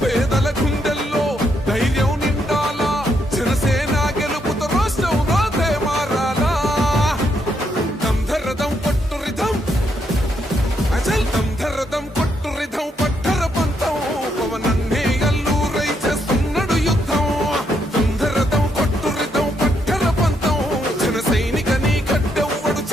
పేదల గుండెల్లో ధైర్యం నిండాలా జనసేన గెలుపుతో రాష్ట్రం రాతే మారాలా దంధరదం కొట్టు రిధం అజల్ దంధరదం కొట్టు రిధం పట్టర పంతం పవనన్నే అల్లూరై చేస్తున్నాడు యుద్ధం దంధరదం కొట్టు రిధం పట్టర పంతం జన సైనిక నీ కట్టెవ్వడు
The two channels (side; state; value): both; normal; correlation 0.77